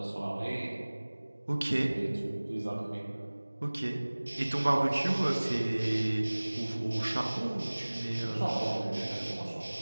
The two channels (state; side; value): inverted; both; correlation -1.00